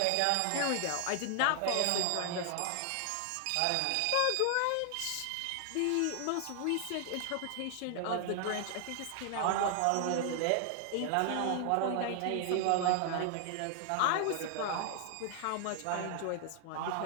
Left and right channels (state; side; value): different; both; correlation 0.00